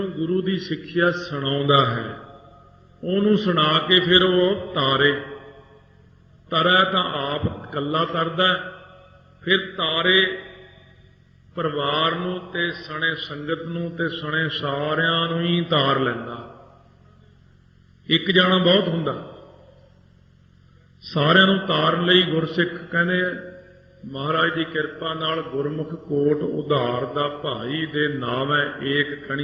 ਗੁਰੂ ਦੀ ਸਿੱਖਿਆ ਸੁਣਾਉਂਦਾ ਹੈ, ਉਹਨੂੰ ਸੁਣਾ ਕੇ ਫਿਰ ਉਹ ਤਾਰੇ। ਤਰੈ ਤਾਂ ਆਪ ਇਕੱਲਾ ਤਰਦਾ, ਫਿਰ ਤਾਰੇ ਪਰਿਵਾਰ ਨੂੰ ਤੇ ਸਣੇ ਸੰਗਤ ਨੂੰ ਤੇ ਸਣੇ ਸਾਰਿਆਂ ਨੂੰ ਹੀ ਤਾਰ ਲੈਂਦਾ। ਇੱਕ ਜਾਣਾ ਬਹੁਤ ਹੁੰਦਾ, ਸਾਰਿਆਂ ਨੂੰ ਤਾਰਨ ਲਈ ਗੁਰਸਿੱਖ ਕਹਿੰਦੇ ਮਹਾਰਾਜ ਦੀ ਕਿਰਪਾ ਨਾਲ ਗੁਰਮੁਖ ਕੋਟ ਉਧਾਰ ਦਾ ਭਾਈ ਦੇ ਨਾਮ ਹੈ ਏਕ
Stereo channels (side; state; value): both; identical; correlation 1.00